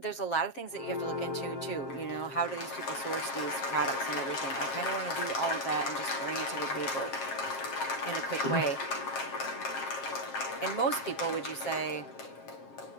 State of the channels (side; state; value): right; late; 7.5 ms